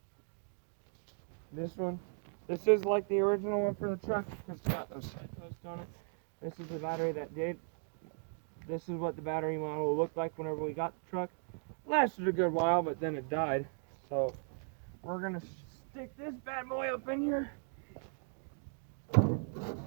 This one. This is like the original one for the truck because it's got those side posts on it. This is the battery that did. This is what the battery model looked like whenever we got the truck. Lasted a good while, but then it died. So we're going to stick this bad boy up in here.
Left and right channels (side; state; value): left; silent; 53 dB below the other